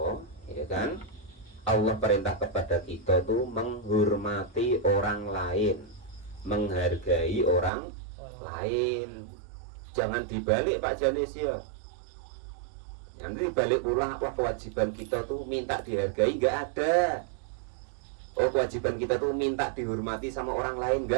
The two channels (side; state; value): left; drops out; at 7.7 s